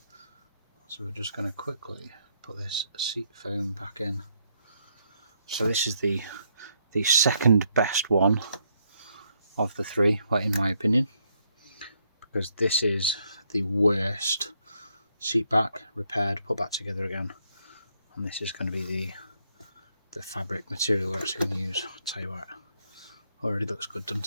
so we're just going to quickly put this seat foam back in. So this is the second best one of the three, well, in my opinion, because this is the worst seat back, repaired, put back together again, and this is going to be the fabric material we're actually going to use. I'll tell you what, already looks good,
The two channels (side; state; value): both; inverted; correlation -0.74